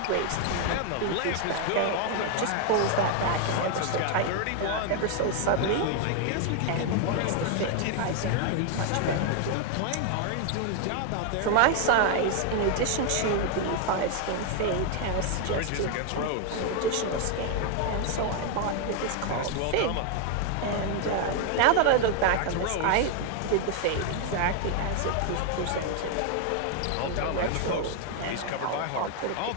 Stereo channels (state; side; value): different; both; correlation 0.00